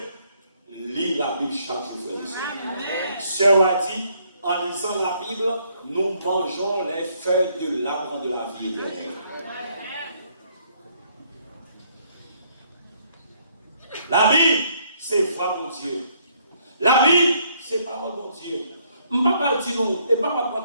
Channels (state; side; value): inverted; both; correlation -0.68